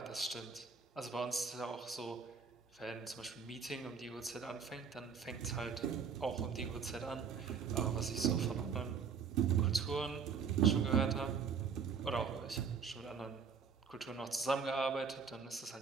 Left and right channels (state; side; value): quieter; left; 6.1 dB